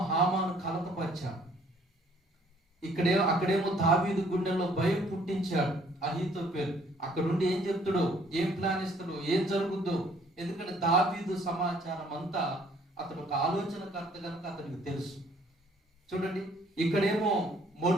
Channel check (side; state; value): both; normal; correlation 0.61